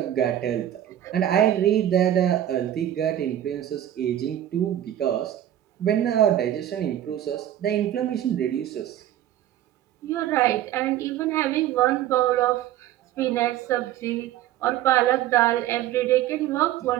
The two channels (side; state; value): left; quieter; 12.1 dB